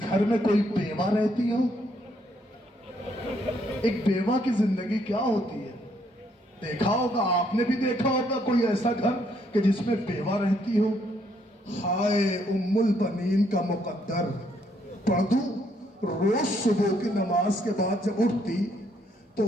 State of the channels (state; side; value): normal; both; correlation 0.71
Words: گھر میں کوئی بیوہ رہتی ہو؟ ایک بیوہ کی زندگی کیا ہوتی ہے دیکھا ہوگا, آپ نے بھی دیکھا ہوگا کوئی ایسا گھر کہ جس میں بیوہ رہتی ہو. ہائے ام البنین کا مقدر. پڑھ دوں, روز صبح کی نماز کے بعد جب اٹھتی تو